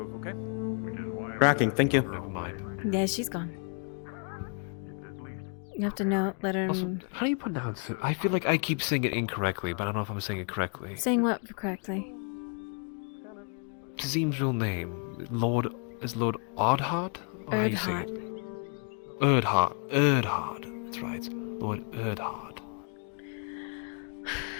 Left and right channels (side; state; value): right; quieter; 39.9 dB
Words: okay? Tracking, thank you. Never mind. Yeah, she's gone. You have to let her... Also, how do you pronounce it? I feel like I keep saying it incorrectly, but I don't know if I'm saying it correctly. Saying what correctly? Tazim's real name. Is Lord Ardhart? Or how you say it? Erdhart. Erdhart. That's right. Lord Erdhart.